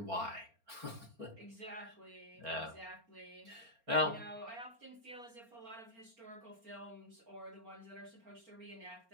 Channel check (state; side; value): late; left; 4.3 ms